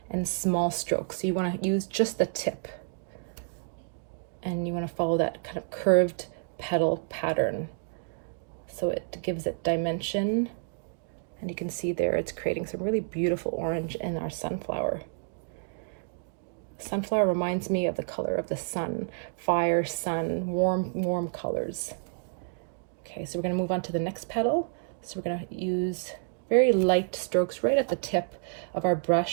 and small strokes. So you want to use just the tip. And you want to follow that kind of curved petal pattern, so it gives it dimension. And you can see there it's creating some really beautiful orange in our sunflower. Sunflower reminds me of the color of the sun, fire, sun, warm colors. Okay, so we're going to move on to the next petal. So we're going to use very light strokes right at the tip of our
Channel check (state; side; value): silent; left; digital silence